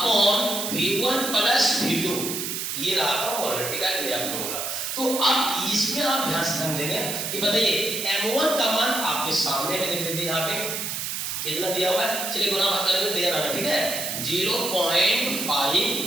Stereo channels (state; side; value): noise; right; hiss, 3 dB below the sound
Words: V1 plus V2। ये रहा आपका मोलरिटी का नया फॉर्मूला। तो अब इसमें आप ध्यान से समझेंगे कि बताइए M1 का मान आपके सामने में देख लीजिए, यहाँ पे कितना दिया हुआ है, चलिए गुना भाग करके तैयार आना, ठीक है। 0.5